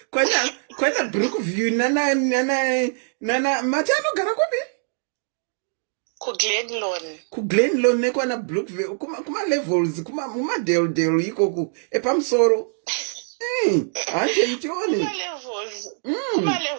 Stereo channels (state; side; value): silent; left; digital silence